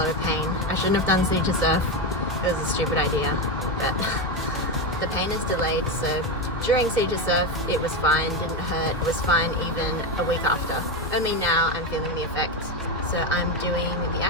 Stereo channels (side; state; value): both; normal; correlation 0.13